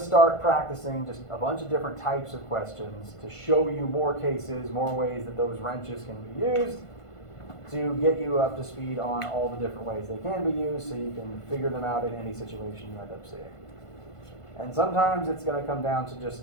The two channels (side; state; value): right; late; 1.5 ms